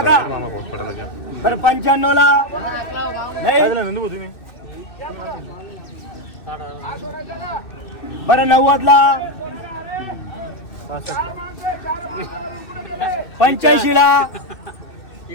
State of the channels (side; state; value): right; late; 2.6 ms